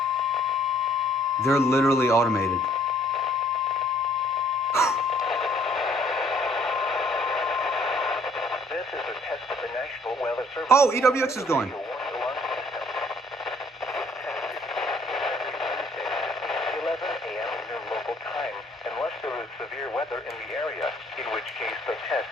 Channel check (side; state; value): both; normal; correlation 0.61